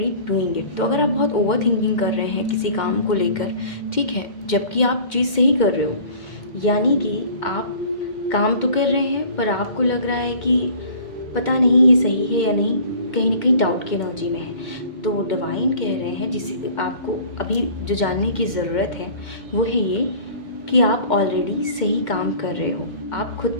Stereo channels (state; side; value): late; right; 2.2 ms